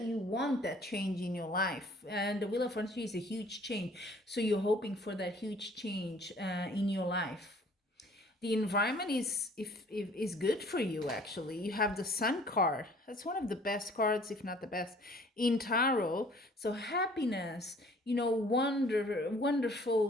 want that change in your life. And the Wheel of Fortune is a huge change, so you're hoping for that huge change in your life. The environment is good for you, actually. You have the Sun card. That's one of the best cards, if not the best, in tarot. So happiness,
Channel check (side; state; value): both; normal; correlation 0.54